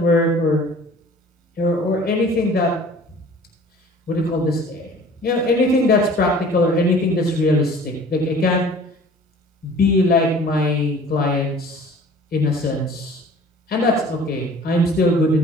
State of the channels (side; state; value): both; normal; correlation 0.47